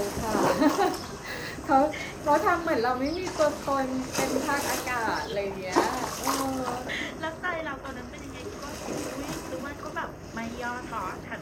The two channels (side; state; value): both; identical; correlation 1.00